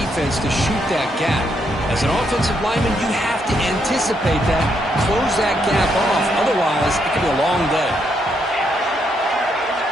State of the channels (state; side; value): normal; both; correlation 0.76